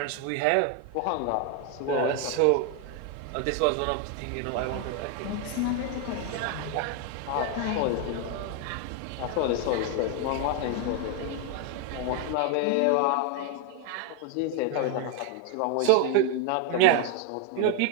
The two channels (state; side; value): different; both; correlation 0.01